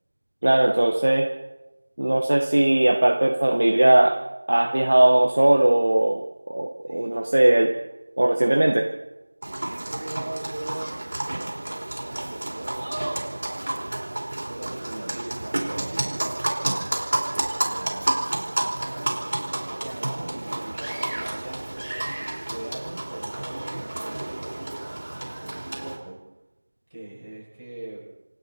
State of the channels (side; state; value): both; inverted; correlation -1.00